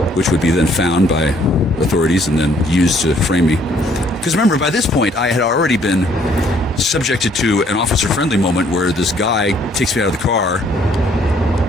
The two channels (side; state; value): both; normal; correlation 0.64